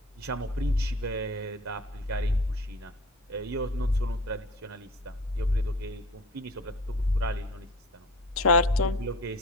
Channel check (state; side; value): normal; both; correlation 0.40